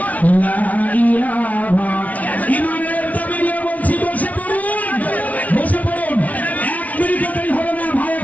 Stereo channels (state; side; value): late; right; 0.070 ms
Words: লা ইলাহা, ইমানের দাবি নিয়ে বলছি, বসে পড়ুন, বসে পড়ুন। এক মিনিটও দেরি হবে না, ভাই